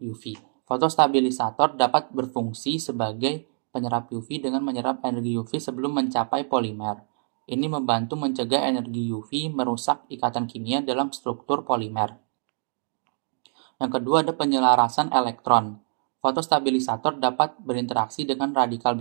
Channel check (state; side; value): silent; left; 61 dB below the other